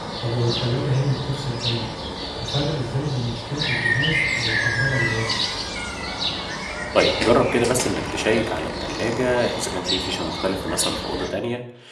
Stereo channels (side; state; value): both; identical; correlation 1.00